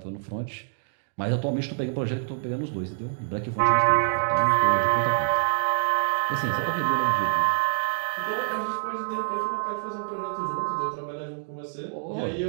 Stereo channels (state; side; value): silent; left; digital silence